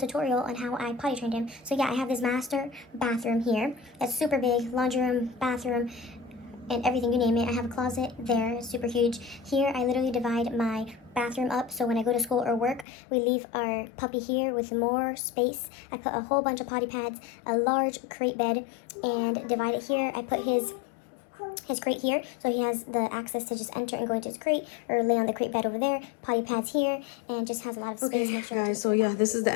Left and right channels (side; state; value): right; drops out; at 12.9 s